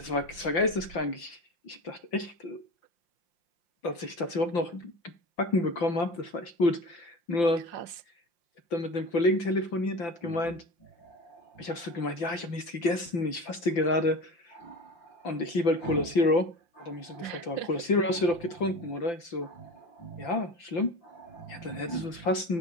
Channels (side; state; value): right; late; 5.9 ms